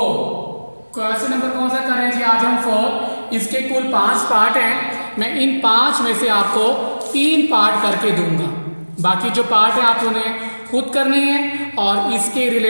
क्वेश्चन नंबर कौन सा कर रहे हैं जी? आज हम 4। इसके कुल 5 पार्ट हैं। मैं इन 5 में से आपको 3 पार्ट करके दूंगा। बाकी जो पार्ट है आप उन्हें खुद करनी है, और इसके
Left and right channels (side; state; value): both; inverted; correlation -1.00